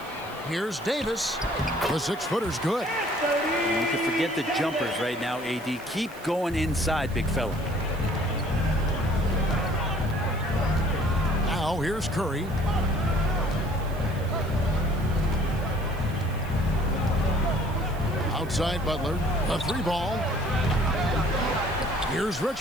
Here's Davis. The six-footer's good. You can forget the jumpers right now, AD. Keep going inside, big fella. Now here's Curry. Outside Butler, a three ball. Here's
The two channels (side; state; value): right; noise; hiss, 22 dB below the sound